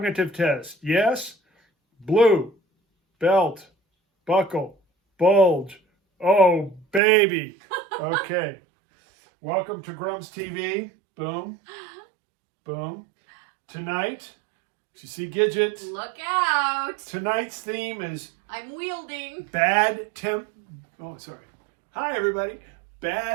test? Yes? Blue, belt, buckle, bulge. Oh, baby. Okay. Welcome to GrumpsTV. Boom. Boom. Tonight, you see Gidget. Look out. Tonight's theme is... I'm wielding. Oh, sorry. Hi, everybody.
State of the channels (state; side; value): drops out; left; at 7.0 s